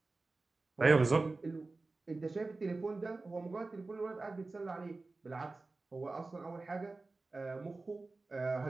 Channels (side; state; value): left; quieter; 3.5 dB